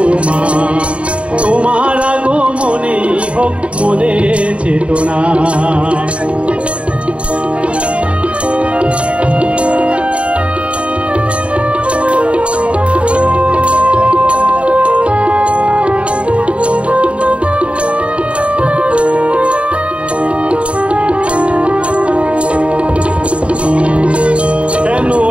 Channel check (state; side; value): late; left; 0.061 ms